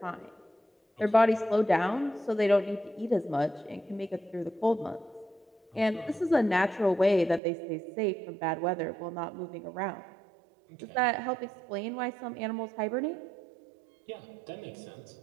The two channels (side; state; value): left; drops out; at 7.4 s